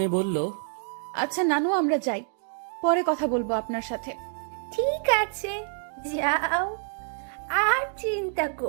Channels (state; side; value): silent; left; 60 dB below the other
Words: বলল, আচ্ছা নানু, আমরা যাই, পরে কথা বলবো আপনার সাথে। ঠিক আছে, যাও, আর চিন্তা